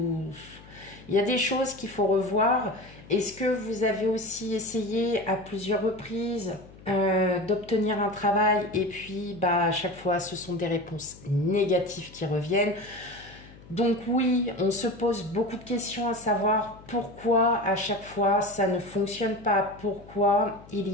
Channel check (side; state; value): left; noise; hum, 21 dB below the sound